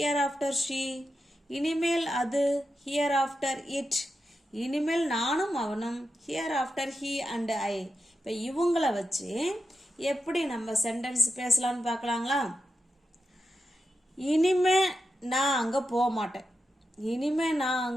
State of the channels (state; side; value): normal; both; correlation 0.89